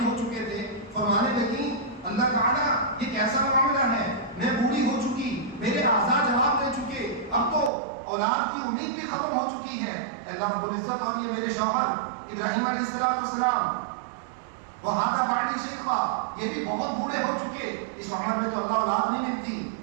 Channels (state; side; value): drops out; left; at 7.7 s